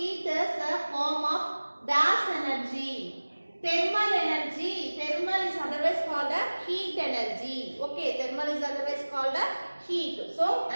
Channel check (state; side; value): inverted; both; correlation -1.00